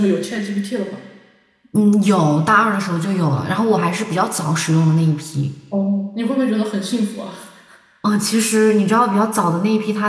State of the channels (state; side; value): identical; both; correlation 1.00